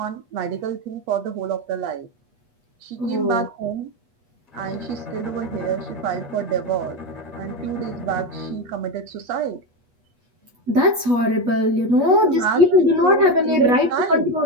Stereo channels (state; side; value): late; left; 8.3 ms